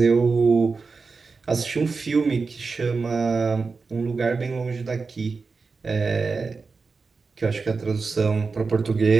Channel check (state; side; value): quieter; left; 4.5 dB